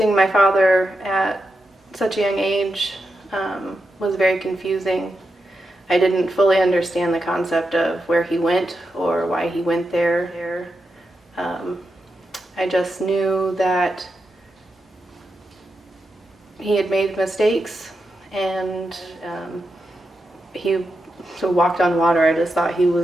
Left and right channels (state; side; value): normal; both; correlation 0.87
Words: my father at such a young age was very confusing. I didn't fully understand the concept of where he went or why he went there. I just knew that he had made mistakes, and he walked on water. I just thought he